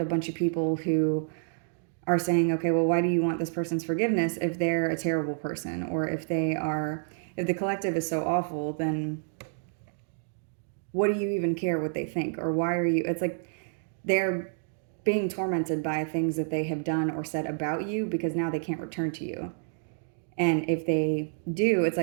a bunch of people who are saying, okay, well, why do you want this person's forgiveness if they're a terrible person? Or if the collective is so awful, then what do you even care what they think? Or why are you, it's like they're being tormented by things that they have done or said about you because now they can't return to you. And if they do, it's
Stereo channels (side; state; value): left; silent; digital silence